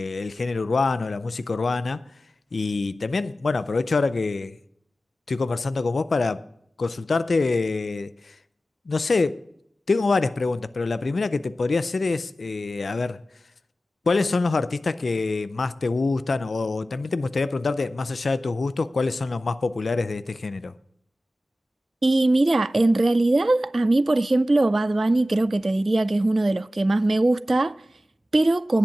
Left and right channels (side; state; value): both; normal; correlation 0.95